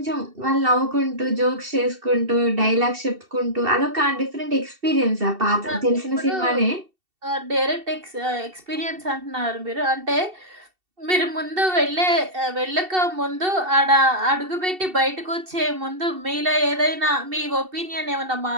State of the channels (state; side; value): late; left; 2.7 ms